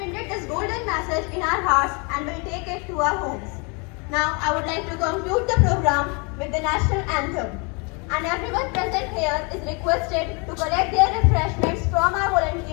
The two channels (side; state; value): right; quieter; 32.4 dB